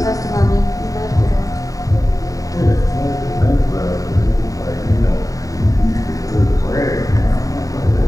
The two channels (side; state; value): right; late; 0.16 ms